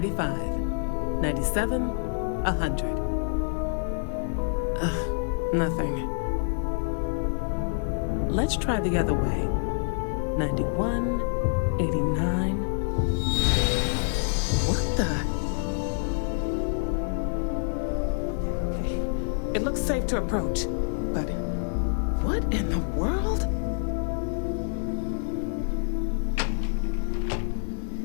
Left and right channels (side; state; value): right; silent; 60 dB below the other